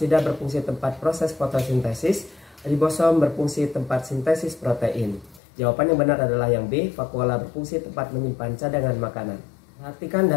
berfungsi tempat proses fotosintesis, ribosom berfungsi tempat sintesis protein. Jawaban yang benar adalah yang B, vakuola berfungsi tempat menyimpan cadangan makanan. Perhatikan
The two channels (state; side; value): drops out; right; at 5.4 s